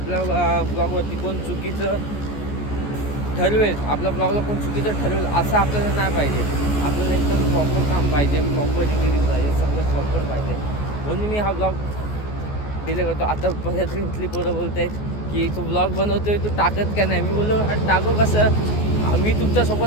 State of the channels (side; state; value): right; late; 14 ms